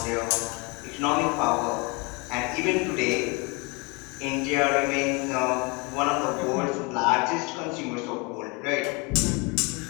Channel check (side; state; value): right; quieter; 29.0 dB